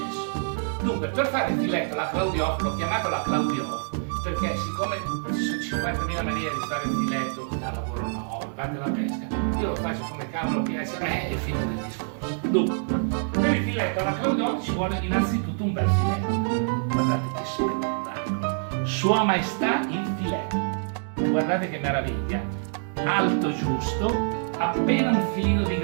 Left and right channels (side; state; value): left; silent; 61 dB below the other